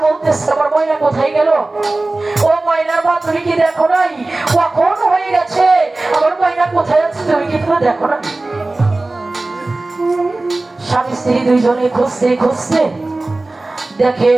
বলতেছে আমার ময়না কোথায় গেল? ও ময়নার মা তুমি কি দেখো নাই? কখন হয়ে গেছে, আমার ময়না কোথায় আছে তুমি কি তো দেখো না? স্বামী স্ত্রী দুইজনে খুঁজতে খুঁজতে দেখে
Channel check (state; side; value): quieter; left; 3.0 dB